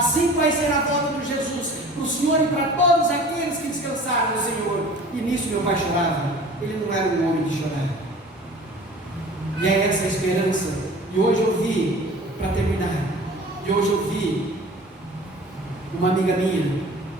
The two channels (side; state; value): both; normal; correlation 0.44